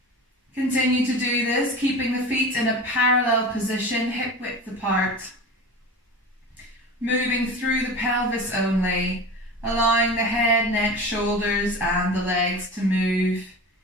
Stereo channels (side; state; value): both; normal; correlation 0.32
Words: Continue to do this, keeping the feet in a parallel position, hip width apart. Moving through the pelvis only, allowing the head, neck, shoulders and the legs to move